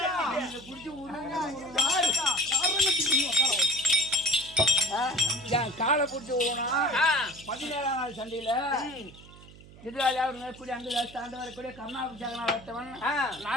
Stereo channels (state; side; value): noise; right; hum, 20 dB below the sound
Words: என் காலை பிடிச்சி விடணும் 17ஆம் நாள் சண்டையில எதிராளியா ஒரு மேற்கூடிய அங்கு தாண்டு வரக்கூடிய கருணாபிஷேகனா வட்டவன்